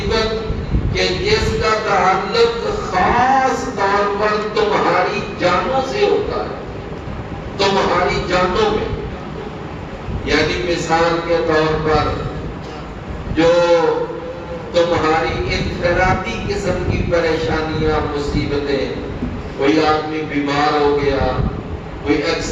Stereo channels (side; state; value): both; identical; correlation 1.00